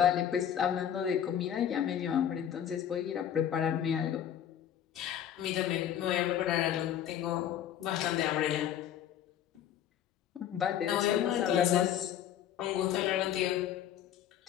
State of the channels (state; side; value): quieter; right; 10.0 dB